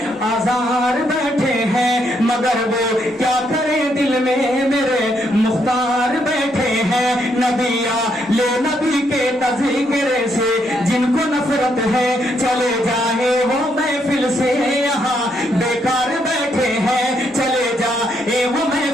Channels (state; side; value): normal; both; correlation 0.75